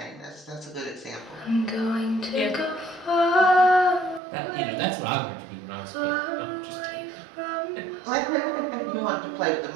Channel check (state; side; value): drops out; left; at 4.2 s